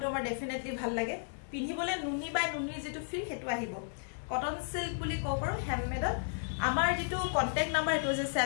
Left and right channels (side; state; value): right; silent; 55 dB below the other